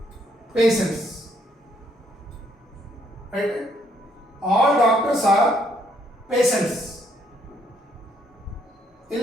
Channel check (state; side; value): normal; both; correlation 0.70